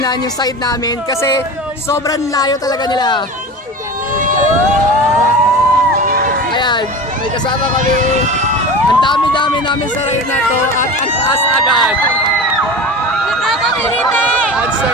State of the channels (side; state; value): both; normal; correlation 0.32